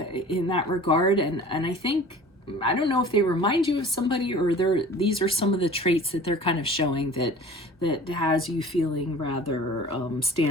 in that regard. And I think, I don't know if they remind you of somebody or these are some of the traits that they're kind of showing that has you feeling rather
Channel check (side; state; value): both; normal; correlation 0.44